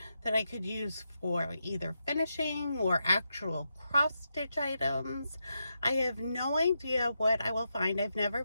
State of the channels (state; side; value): inverted; both; correlation -0.85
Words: that I could use for either finishing or actual cross stitch items. I have no idea what I will find. I've never